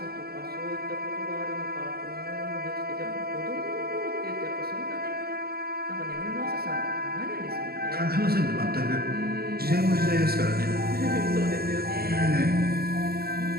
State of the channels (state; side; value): late; left; 0.45 ms